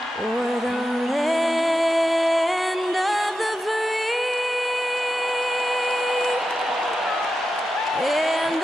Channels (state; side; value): normal; both; correlation 0.90